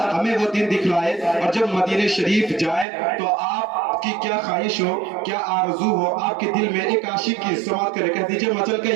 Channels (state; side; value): drops out; left; at 2.9 s